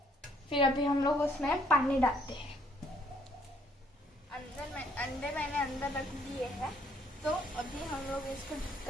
फिर अभी हम लोग उसमें पानी डालते हैं। अंडे मैंने अंदर रख दिए हैं। तो अभी हम लोग इसको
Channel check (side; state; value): both; normal; correlation 0.66